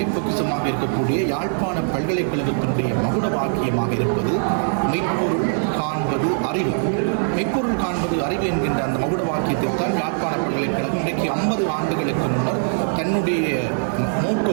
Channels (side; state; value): left; silent; digital silence